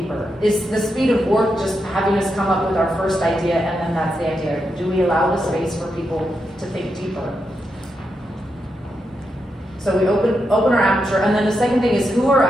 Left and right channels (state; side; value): normal; both; correlation 0.85